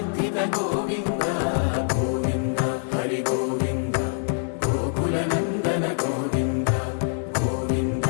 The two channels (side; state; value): right; silent; 62 dB below the other